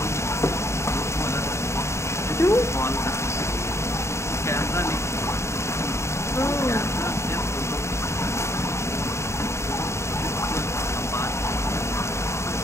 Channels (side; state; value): right; late; 0.13 ms